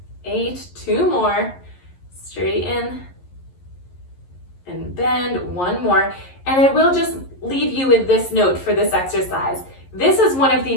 8, 2 more. Straighten and bend, 1 more. And I will just leave you with this note for this exercise. This is one of the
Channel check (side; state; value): right; late; 11 ms